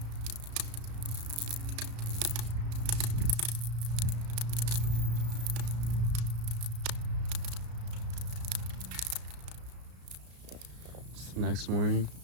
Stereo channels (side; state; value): left; late; 34 ms